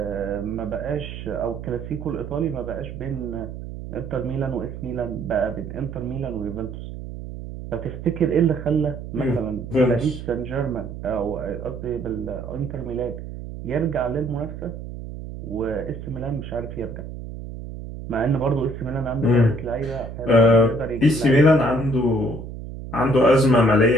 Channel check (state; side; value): noise; right; hum, 10 dB below the sound